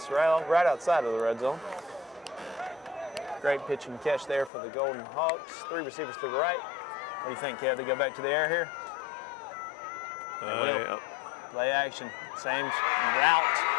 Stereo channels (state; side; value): drops out; right; at 4.5 s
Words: right outside of the red zone. Great pitch and catch there for the Golden Hawks. 3 receivers to the right. What do you think, Kev? They go back to the air here? They will. Yeah. Play action. Same route.